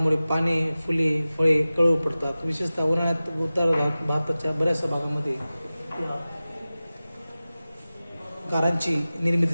पाने फुले फळे कळू पडतात. विशेषतः उन्हाळ्यात उत्तर भारताच्या बऱ्याचशा भागामध्ये गारांची निर्मिती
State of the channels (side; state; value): both; inverted; correlation -0.96